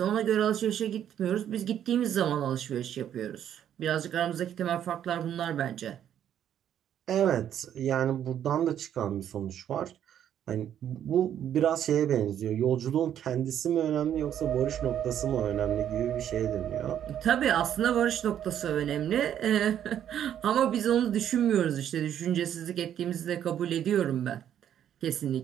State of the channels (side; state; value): left; quieter; 10.1 dB